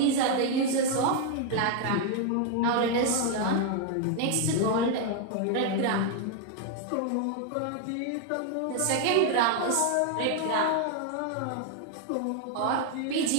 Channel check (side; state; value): both; different; correlation 0.00